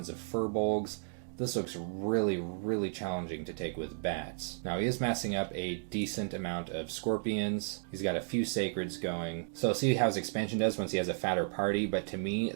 of furbolgs. This looks really challenging to take with bats. Now he is massing up a decent amount of scorpions. He's got a few sacreds going. So see how his expansion does once he has a fatter party, but to me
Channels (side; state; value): left; silent; digital silence